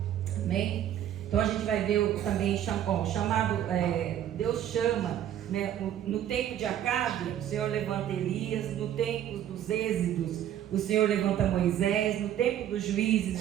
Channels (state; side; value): quieter; left; 11.0 dB